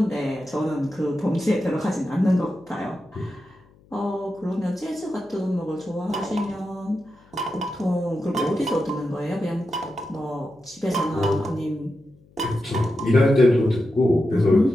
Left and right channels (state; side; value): noise; left; hum, 29 dB below the sound